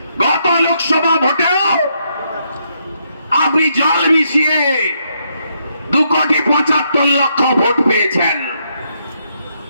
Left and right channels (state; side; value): inverted; both; correlation -0.77